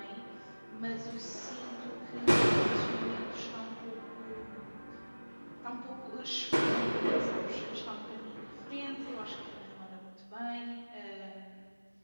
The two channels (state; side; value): inverted; both; correlation -1.00